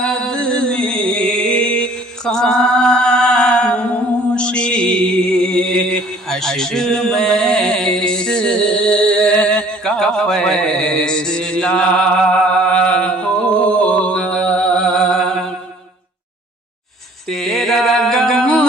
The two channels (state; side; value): normal; both; correlation 0.54